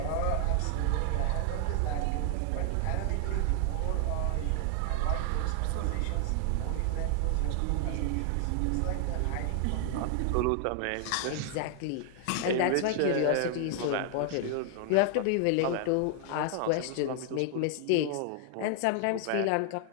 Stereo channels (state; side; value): different; both; correlation 0.00